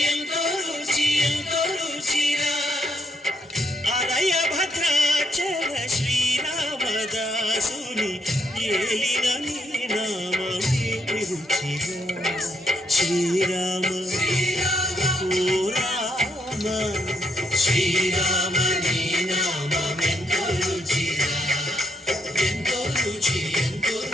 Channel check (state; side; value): normal; both; correlation 0.75